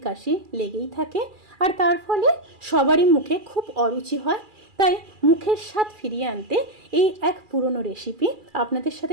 কাশি লেগেই থাকে, আর তার ফলে সবারই মুখে খুব অরুচি হয়। তাই মুখের স্বাদ ফিরিয়ে আনতে এই এক পুরনো রেসিপি আপনাদের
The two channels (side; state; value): left; late; 2.4 ms